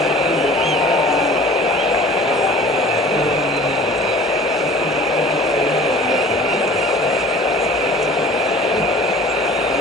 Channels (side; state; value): both; normal; correlation 0.46